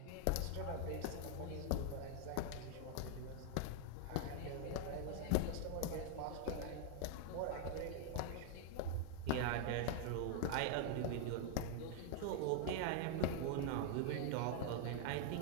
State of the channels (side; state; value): both; different; correlation 0.00